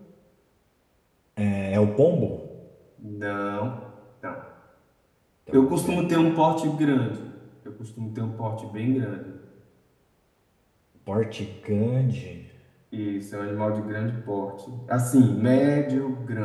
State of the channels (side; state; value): both; identical; correlation 1.00